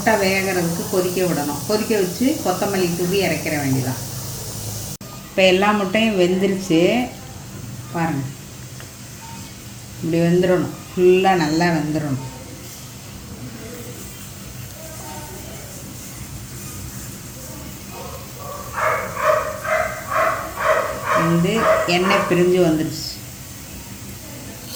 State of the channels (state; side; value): identical; both; correlation 1.00